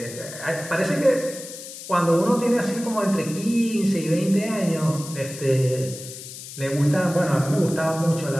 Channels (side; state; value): left; noise; hiss, 12 dB below the sound